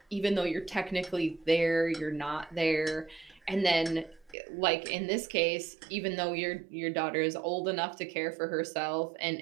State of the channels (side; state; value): left; drops out; at 4.4 s